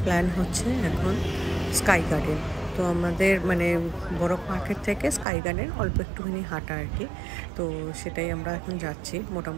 প্ল্যান হচ্ছে এখন স্কাই গার্ডেন। তো আমাদের মানে বরফ মার্কেট থেকে স্কাই গার্ডেন অল্প একটুখানি হাঁটা আর কি। তো সেটাই আমরা এখন যাচ্ছি,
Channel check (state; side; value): drops out; left; at 5.2 s